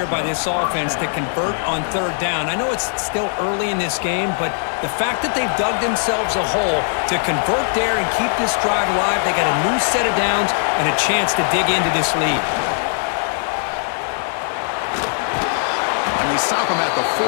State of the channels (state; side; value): silent; right; 66 dB below the other